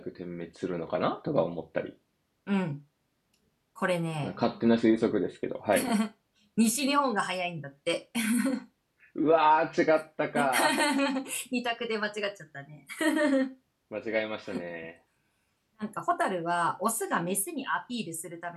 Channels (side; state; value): both; identical; correlation 1.00